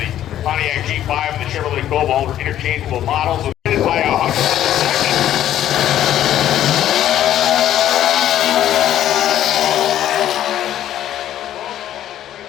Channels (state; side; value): quieter; right; 11.8 dB